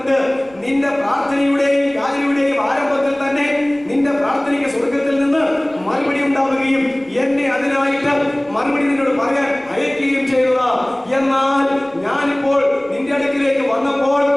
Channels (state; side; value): noise; right; rumble, 29 dB below the sound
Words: നിന്റെ പ്രാർത്ഥനയുടെയും യാചനയുടെയും ആരംഭത്തിൽ തന്നെ നിന്റെ പ്രാർത്ഥനയ്ക്ക് സ്വർഗത്തിൽ നിന്ന് മറുപടി ഉണ്ടാവുകയും എന്നെ അതിനായിട്ട് മറുപടി നിന്നോട് പറയാൻ അയക്കുകയും ചെയ്തതാ. എന്നാൽ ഞാനിപ്പോൾ നിന്റെ അടുക്കിലേക്ക് വന്നപ്പോൾ